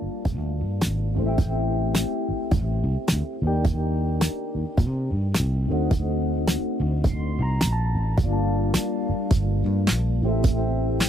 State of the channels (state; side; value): normal; both; correlation 0.79